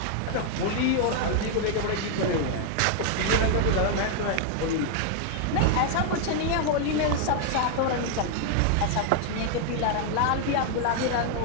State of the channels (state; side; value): different; both; correlation 0.00